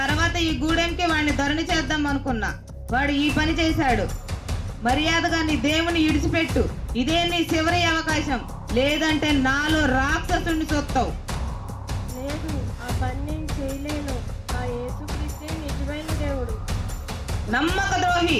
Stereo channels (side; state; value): both; identical; correlation 1.00